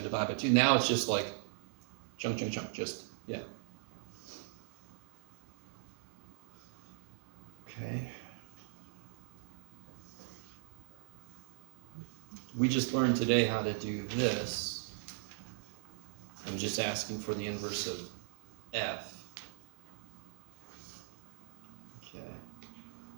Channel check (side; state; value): left; silent; digital silence